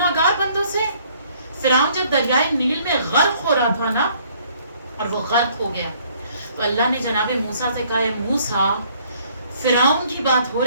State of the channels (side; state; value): both; inverted; correlation -0.62